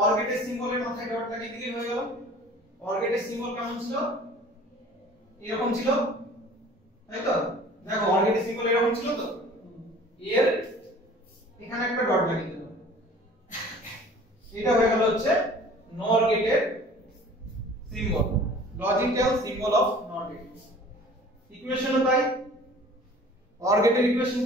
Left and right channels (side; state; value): both; normal; correlation 0.47